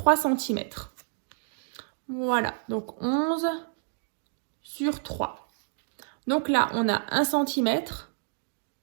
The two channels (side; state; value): left; silent; digital silence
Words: cm. Voilà, donc 11 sur 3. Donc là, on a 1 cm,